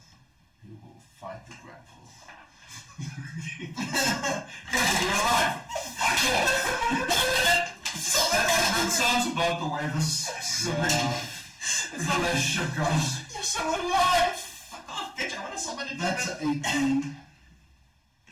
You will fight the grapple. You're alive! That sounds about the way this relationship goes. You're so alive. Fuck off, bitch. I want to summon a That's demon. 18.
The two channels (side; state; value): both; identical; correlation 1.00